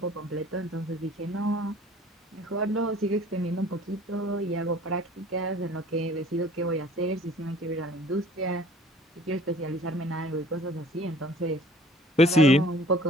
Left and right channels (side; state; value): both; normal; correlation 0.51